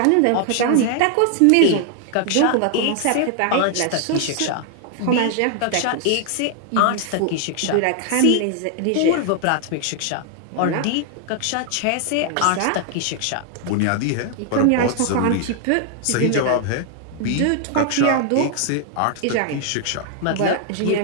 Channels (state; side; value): different; both; correlation 0.00